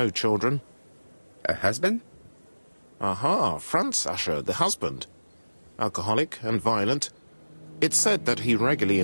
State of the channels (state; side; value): inverted; both; correlation -1.00